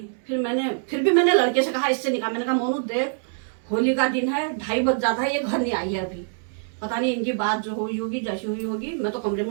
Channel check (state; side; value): silent; left; 62 dB below the other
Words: फिर भी मैंने लड़के से कहा, इससे निकाल। मैंने कहा मोनू देख, होली का दिन है, 2:30 बज जाता है, ये घर नहीं आई है अभी। पता नहीं इनकी बात जो हुई होगी, जैसी हुई होगी। मैं तो कमरे